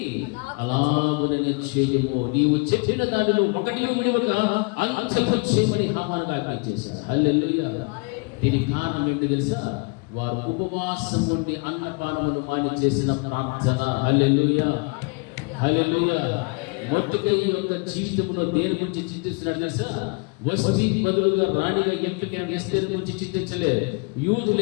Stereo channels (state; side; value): quieter; right; 32.0 dB